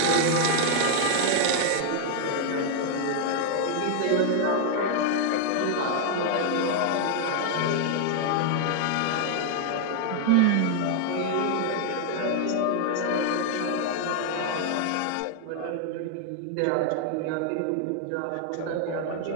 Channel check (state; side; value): different; both; correlation 0.00